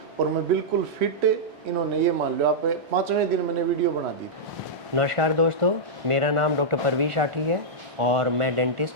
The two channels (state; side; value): late; left; 1.4 ms